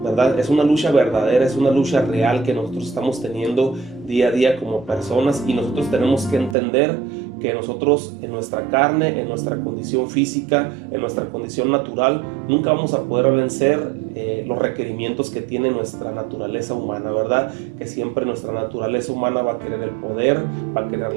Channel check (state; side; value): drops out; left; at 6.6 s